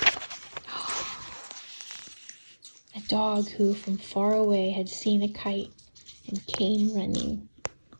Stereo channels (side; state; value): both; inverted; correlation -1.00